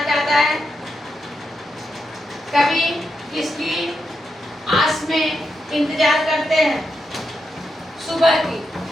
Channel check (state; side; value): normal; both; correlation 0.85